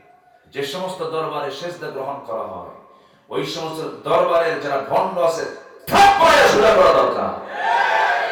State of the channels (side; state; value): both; identical; correlation 1.00